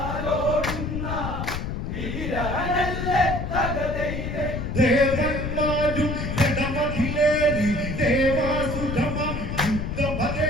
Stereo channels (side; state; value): left; noise; rumble, 4 dB below the sound